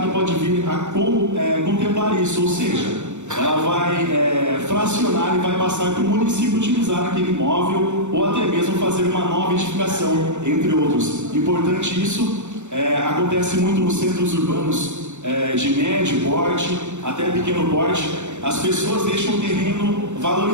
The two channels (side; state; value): left; late; 0.84 ms